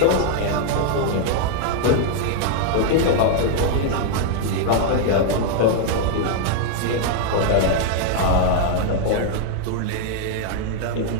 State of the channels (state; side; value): different; both; correlation -0.01